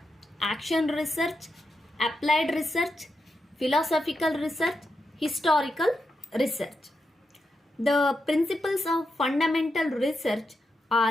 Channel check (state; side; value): normal; both; correlation 0.86